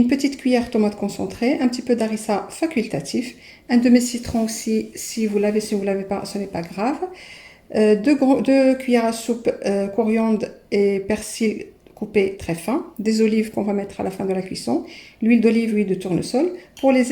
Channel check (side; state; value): both; identical; correlation 1.00